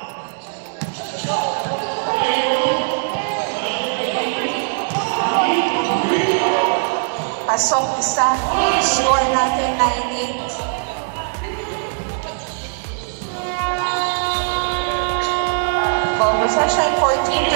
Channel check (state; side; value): silent; left; digital silence